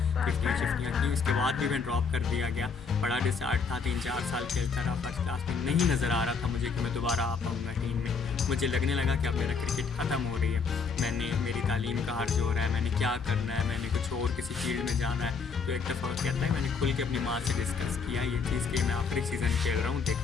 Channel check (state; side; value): quieter; right; 5.2 dB